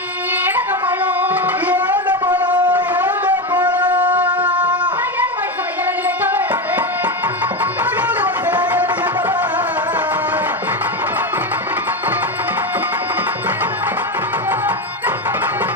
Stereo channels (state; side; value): normal; both; correlation 0.15